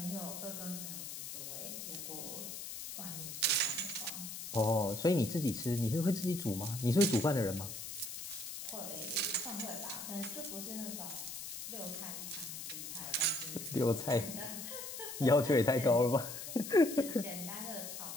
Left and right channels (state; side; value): noise; left; hiss, 8 dB below the sound